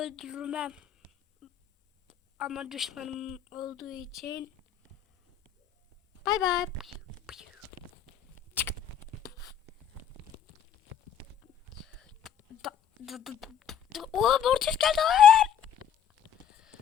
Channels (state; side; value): quieter; right; 8.9 dB